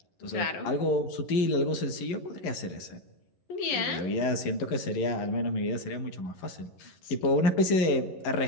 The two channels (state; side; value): late; right; 11 ms